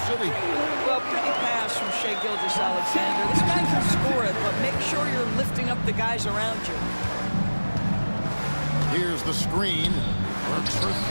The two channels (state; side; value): inverted; both; correlation -1.00